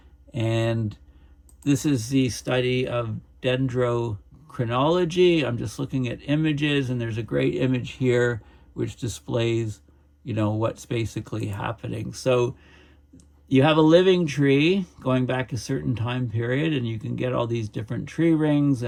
And this is the study of dendrochronology. I'm just looking at images, and there's a great image here which displays, what's basically happening. So you have a living tree going back a certain time period, and you can get all these different tree rings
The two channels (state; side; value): identical; both; correlation 1.00